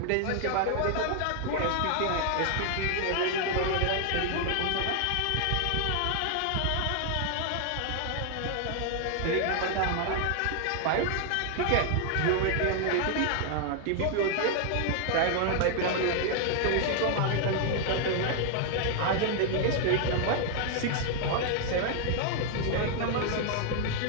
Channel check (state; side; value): different; both; correlation 0.00